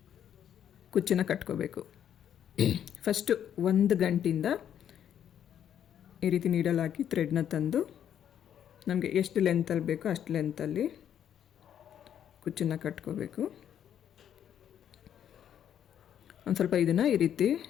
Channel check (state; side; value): quieter; right; 9.6 dB